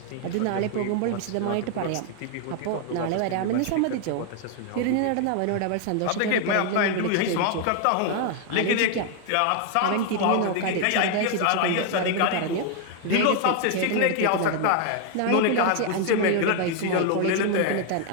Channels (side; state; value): both; different; correlation 0.00